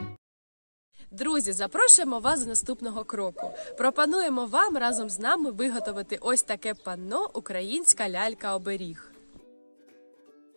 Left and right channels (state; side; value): inverted; both; correlation -1.00